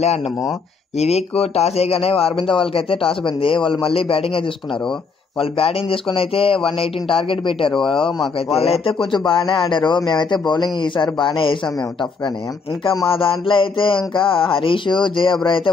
ఆడినాము. ఈ వీక్ టాస్ వేయగానే అరవింద వాళ్ళకైతే టాస్ పోయింది. వాళ్ళు మళ్ళీ బ్యాటింగ్ తీసుకున్నారు. వాళ్ళు బ్యాటింగ్ తీసుకుని అయితే 118 టార్గెట్ పెట్టారు మాకైతే. వాళ్ళైతే కొంచెం బాగానే ఆడారు. మేమైతే బౌలింగ్ ఈసారి బాగానే వేసాం మేము టఫ్ గానే. ఇంకా మా దాంట్లో అయితే ఇంకా హరీష్ జయబ్రా అయితే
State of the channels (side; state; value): right; quieter; 4.7 dB